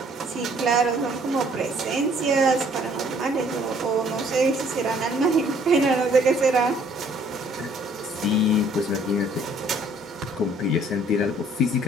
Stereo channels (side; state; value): both; normal; correlation 0.60